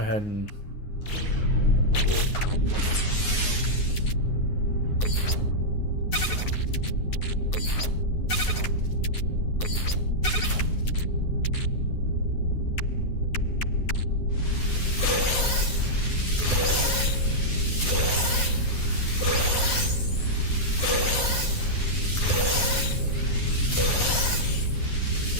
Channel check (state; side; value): late; right; 9.5 ms